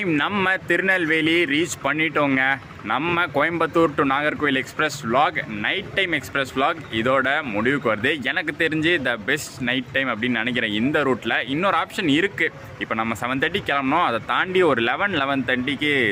நம்ம திருநெல்வேலி ரீச் பண்ணிட்டோங்க. நம்ம Coimbatore to Nagercoil express vlog night time express vlog இதோட முடிவுக்கு வருது. எனக்கு தெரிஞ்சு த பெஸ்ட் நைட் டைம் அப்படின்னு நினைக்கிறேன். இந்த ரூட்டில் இன்னொரு ஆப்ஷன் இருக்குது. இப்போ நம்ம 7:30 கிளம்பணும், அதை தாண்டி ஒரு 11:30க்கு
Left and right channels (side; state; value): both; identical; correlation 1.00